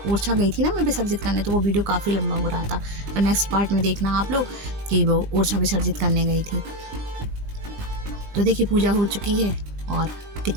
ओरछा गई थी ना मैं विसर्जित करने, तो वो वीडियो काफ़ी लंबा हो रहा था। तो नेक्स्ट पार्ट में देखना आप लोग कि वो ओरछा विसर्जित करने गई थी। तो देखिए पूजा हो चुकी है, और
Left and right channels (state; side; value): late; left; 20 ms